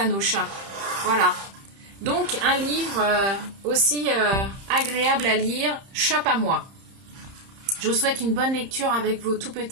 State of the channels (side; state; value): left; late; 30 ms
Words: nos chats. Voilà. Donc un livre aussi agréable à lire, Chape à moi. Je vous souhaite une bonne lecture avec vos tout